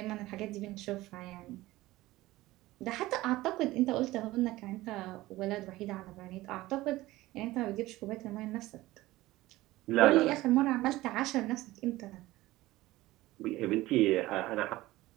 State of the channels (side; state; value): left; quieter; 17.8 dB